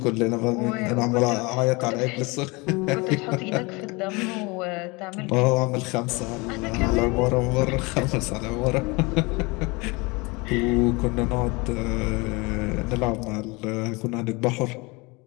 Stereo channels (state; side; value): quieter; right; 26.2 dB